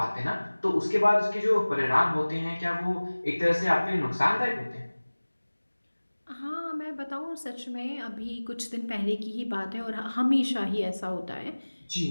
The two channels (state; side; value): inverted; both; correlation -1.00